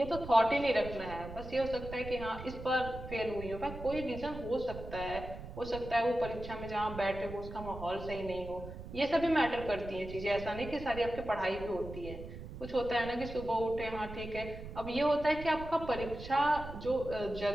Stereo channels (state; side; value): noise; right; rumble, 11 dB below the sound